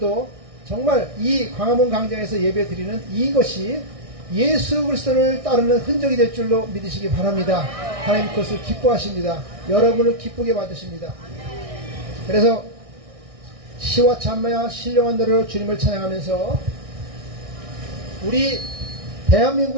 정말 이 광화문 광장에서 예배 드리는 이것이 예수 그리스도를 따르는 흔적이 될 줄로 믿으시기 바랍니다. 하나님 그것을 기뻐하십니다. 여러분을 기쁘게 받으십니다. 그래서 시와 찬미와 신령한 노래로 주님을 찬양하면서 우리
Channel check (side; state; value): left; late; 1.6 ms